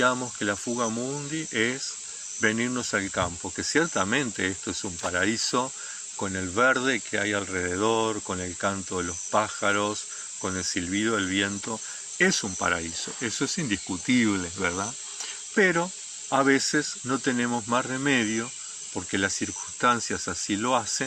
que la fuga mundi es venirnos al campo, que ciertamente esto es un paraíso con el verde que hay alrededor, con el canto de los pájaros, con el silbido del viento, es un paraíso, eso es indiscutible, ¿verdad? Pero a veces no tenemos más remedio, porque las circunstancias así lo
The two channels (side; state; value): both; identical; correlation 1.00